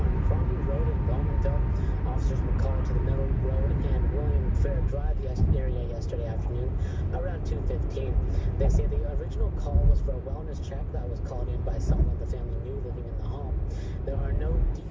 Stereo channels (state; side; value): identical; both; correlation 1.00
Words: Crombie Road in Bowmanville. Officers were called to the Middle Road and William Drive area yesterday afternoon around 2:15. They say the original call was for a wellness check that was called in by someone the family knew living in the home. There are no